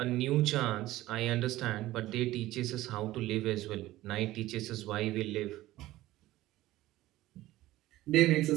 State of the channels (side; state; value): left; quieter; 16.4 dB